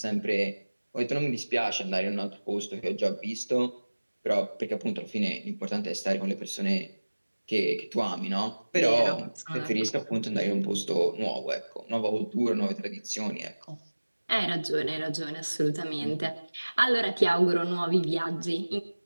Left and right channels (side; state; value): both; inverted; correlation -1.00